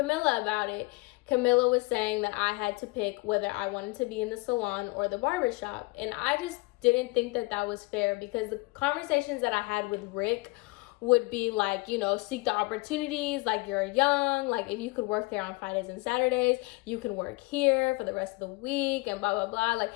about it, Camilla was saying that I had to pick whether I wanted to be in the salon or the barbershop. And I just didn't think that that was fair, because the conversations that I had with Rick would be like, you know, seek the opportunities, like you're young, like if you could work there on Fridays and Saturdays, you can work here for the rest of the week, and blah blah blah. Like,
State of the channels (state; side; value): quieter; right; 24.5 dB